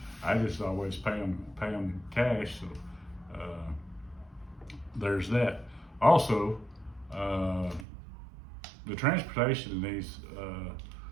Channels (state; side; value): drops out; left; at 7.9 s